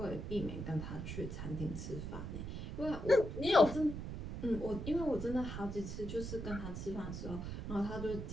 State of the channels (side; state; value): right; noise; rumble, 6 dB below the sound